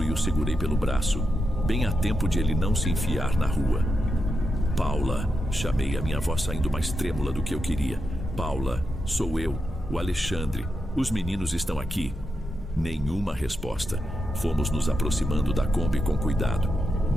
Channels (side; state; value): both; normal; correlation 0.86